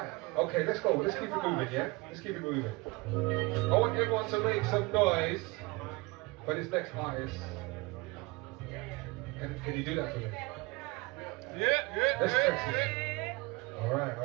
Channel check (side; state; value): left; quieter; 24.8 dB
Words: okay, let's go. Let's keep it moving, yeah? Let's keep it moving. I want everyone to make some noise for this next artist. Can you do that for me? Yeah. Let's test it. Alright,